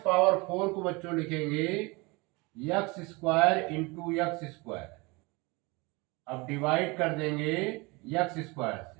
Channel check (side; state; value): left; quieter; 26.0 dB